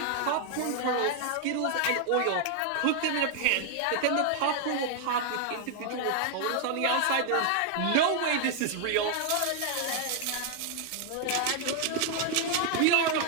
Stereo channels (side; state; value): both; different; correlation 0.00